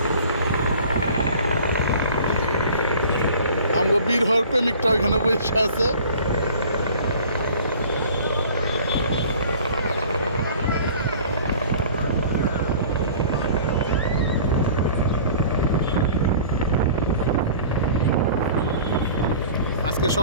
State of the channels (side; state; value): both; inverted; correlation -0.45